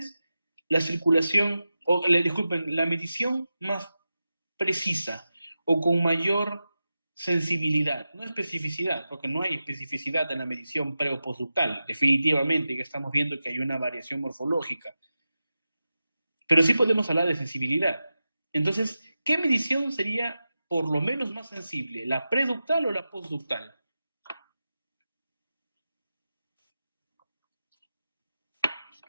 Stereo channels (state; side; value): inverted; both; correlation -0.92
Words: la circulación, o disculpen, la medición más precisa o con mayor sensibilidad? No especificidad, porque no hay especificidad en la medición pre o postductal, definitivamente, que estamos viendo que hay una variación morfológica. Pero sí podemos hablar de sensibilidad. Entonces, ¿qué medición sería por lo menos más sensible, la preductal o la postductal?